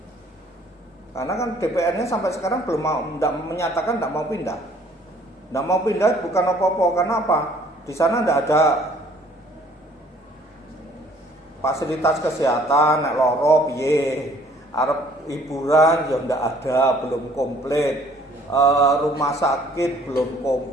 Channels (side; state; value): both; normal; correlation 0.58